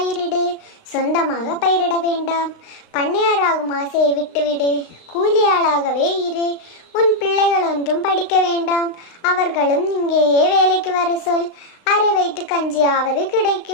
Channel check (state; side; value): late; right; 35 ms